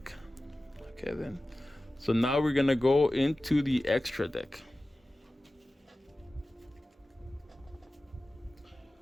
Okay then. So now we're gonna go into the extra deck.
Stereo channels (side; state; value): both; normal; correlation 0.96